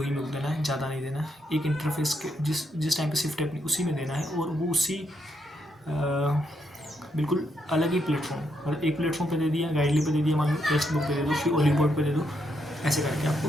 ही में देना है, ज़्यादा नहीं देना है। एक इंटरफेस के जिस टाइम पे शिफ्ट है अपनी, उसी में देना है, और वो उसी बिल्कुल अलग ही प्लेटफॉर्म, मतलब एक प्लेटफॉर्म पे दे दिया, गाइडली पे दे दिया, मान लो टेक्स्ट बुक पे दे दो, फिर ओली बोर्ड पे दे दो। ऐसे करके आपको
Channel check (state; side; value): normal; both; correlation 0.78